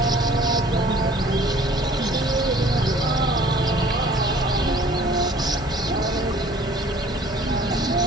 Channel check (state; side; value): normal; both; correlation 0.52